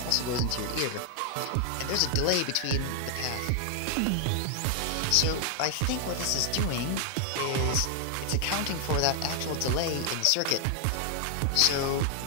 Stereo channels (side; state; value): both; different; correlation 0.00